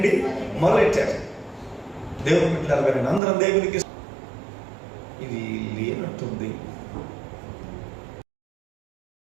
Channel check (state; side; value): drops out; left; at 3.2 s